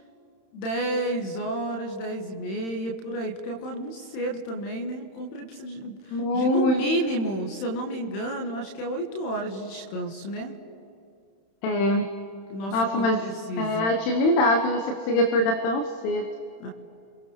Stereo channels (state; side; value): late; right; 31 ms